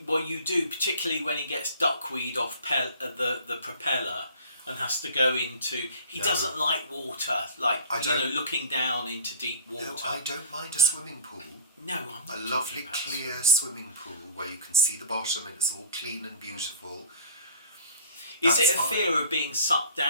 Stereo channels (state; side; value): inverted; both; correlation -0.43